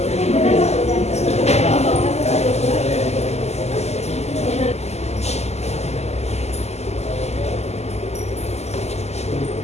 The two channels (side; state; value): right; late; 0.32 ms